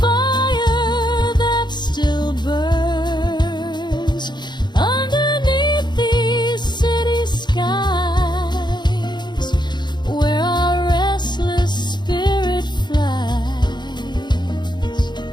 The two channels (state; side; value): late; right; 0.21 ms